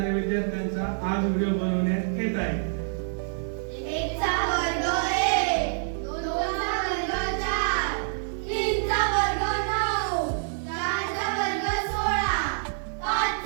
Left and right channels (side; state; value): left; silent; 59 dB below the other